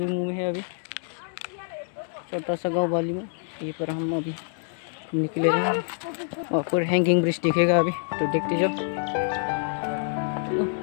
में है अभी, छोटा सा गांव बालीमू। यहीं पर हम अभी निकले हैं और फिर हैंगिंग ब्रिज दिखेगा अभी, तो देखते जाओ। चलो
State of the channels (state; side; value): silent; right; 56 dB below the other